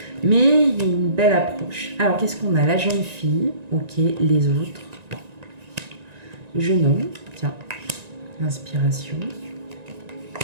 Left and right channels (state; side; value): late; left; 1.9 ms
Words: Mais il y a une belle approche. Alors, qu'est-ce qu'on a? La jeune fille, ok, les autres. Le jeune homme, tiens, l'inspiration.